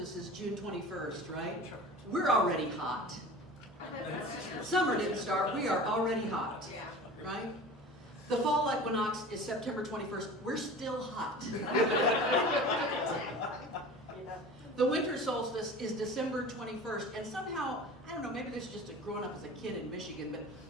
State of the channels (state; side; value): normal; both; correlation 0.38